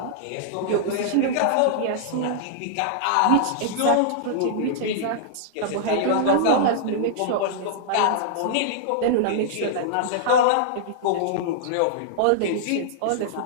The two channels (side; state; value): both; different; correlation -0.01